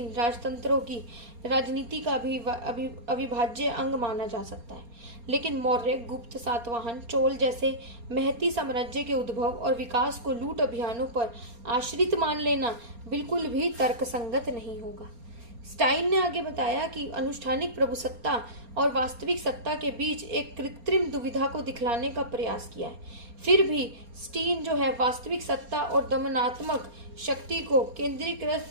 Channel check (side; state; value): left; late; 4.3 ms